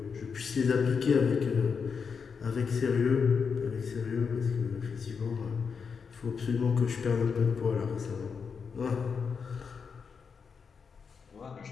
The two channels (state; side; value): quieter; right; 5.9 dB